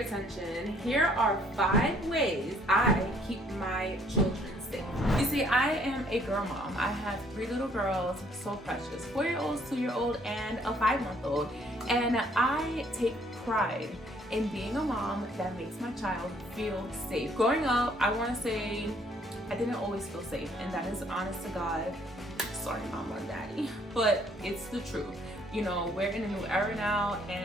here are 5 ways I keep my children safe. You see, I am a girl mom. I have 3 little girls, so precious, 4-year-olds, 2-year-old, and a 5-month-old. And I take pride in being a mom that makes my child feel safe. Growing up, I want to say I didn't always feel safe, and that is honest to God. Sorry, mama and daddy, but it's the truth. You know, we're in a new era now,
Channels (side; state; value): both; normal; correlation 0.63